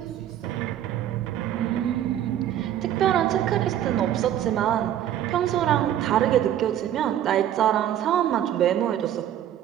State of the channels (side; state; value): left; quieter; 11.2 dB